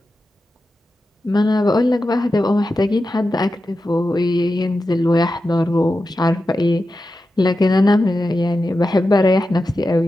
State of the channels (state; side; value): normal; both; correlation 0.91